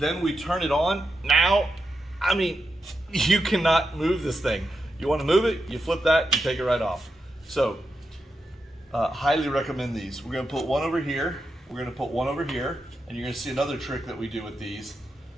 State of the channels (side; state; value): both; normal; correlation 0.87